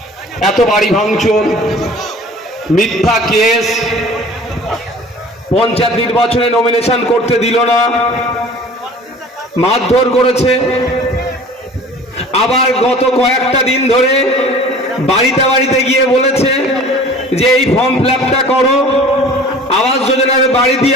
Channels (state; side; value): normal; both; correlation 0.45